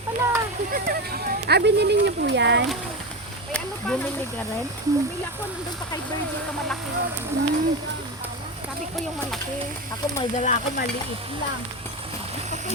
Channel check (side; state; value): both; normal; correlation 0.19